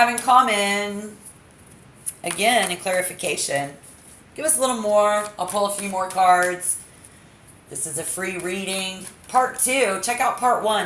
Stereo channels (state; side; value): identical; both; correlation 1.00